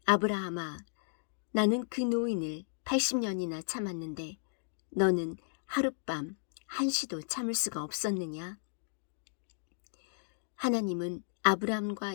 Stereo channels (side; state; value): right; silent; digital silence